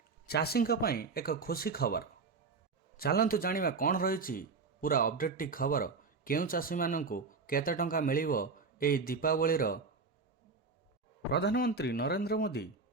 चाषी एक खुशी खबर। चलतु जानिबा कौन रही पूरा अपडेट टी खबर। केउ चाषी माननकु केते टंका मिलिबो एई दीपावली रो। प्रधानमंत्री नरेंद्र मोदी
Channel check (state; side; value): quieter; left; 4.5 dB